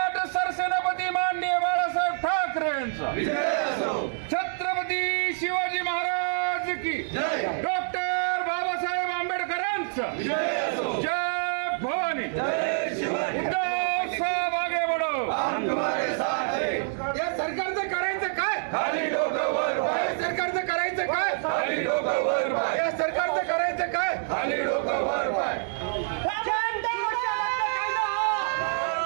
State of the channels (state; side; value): silent; left; 60 dB below the other